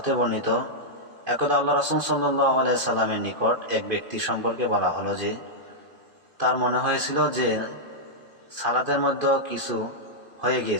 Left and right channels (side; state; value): left; late; 2.5 ms